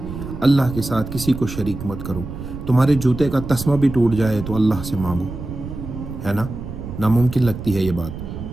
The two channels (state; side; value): noise; right; rumble, 9 dB below the sound